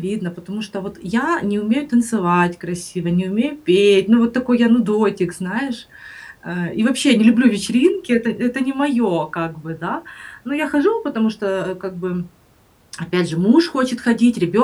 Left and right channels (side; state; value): both; identical; correlation 1.00